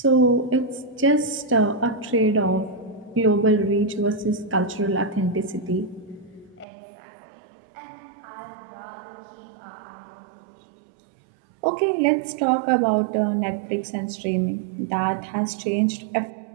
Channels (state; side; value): drops out; left; at 6.7 s